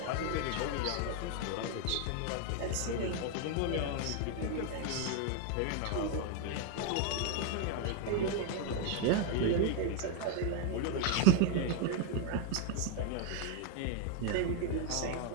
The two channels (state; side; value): different; both; correlation 0.01